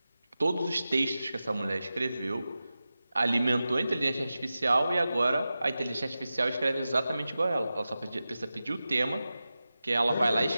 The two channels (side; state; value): both; inverted; correlation -0.93